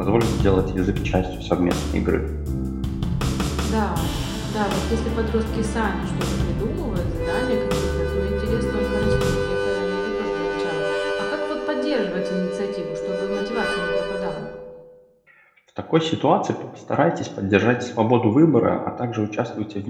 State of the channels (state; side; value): identical; both; correlation 1.00